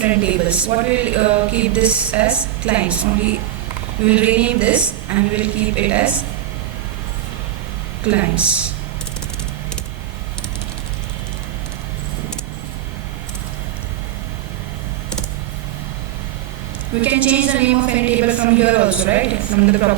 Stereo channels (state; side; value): quieter; left; 13.0 dB